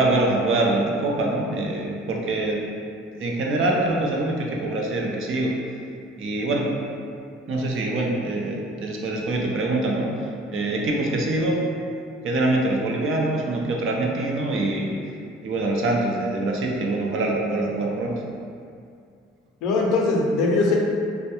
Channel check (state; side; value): normal; both; correlation 0.46